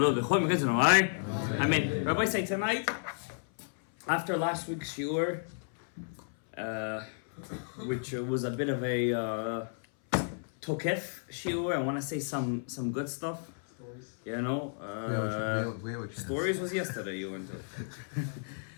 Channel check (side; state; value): right; silent; 56 dB below the other